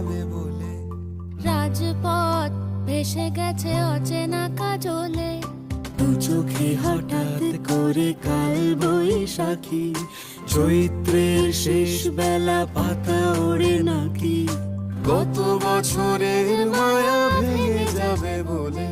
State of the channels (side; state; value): both; identical; correlation 1.00